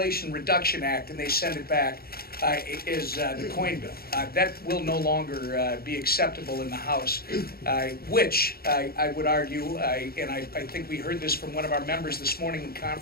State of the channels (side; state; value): right; late; 0.44 ms